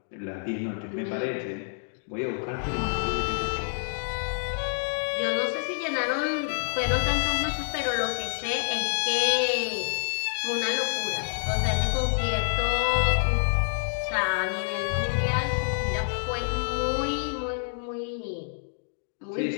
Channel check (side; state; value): right; silent; digital silence